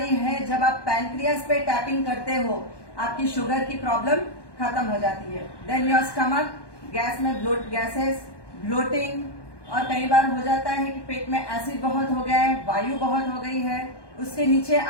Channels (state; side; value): late; right; 1.2 ms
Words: है, जब आप पैंक्रियास पे टैपिंग करते हो आपकी शुगर की प्रॉब्लम खत्म हो जाती है। देन योर स्टमक, गैस में गैसेस, ब्लोटिंग, और कई बार हो जाता है कि पेट में एसिड बहुत हो गया है, वायु बहुत हो गई है। उसके नीचे